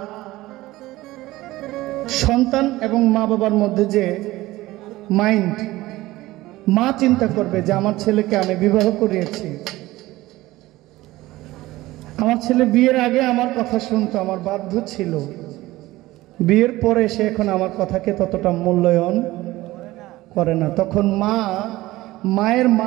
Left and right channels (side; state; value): left; quieter; 17.9 dB